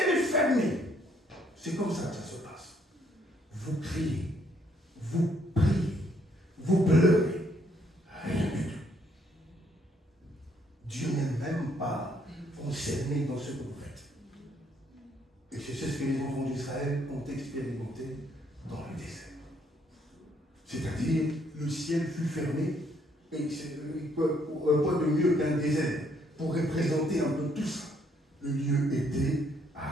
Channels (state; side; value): normal; both; correlation 0.69